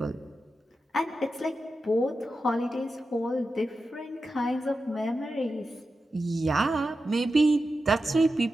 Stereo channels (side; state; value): both; normal; correlation 0.91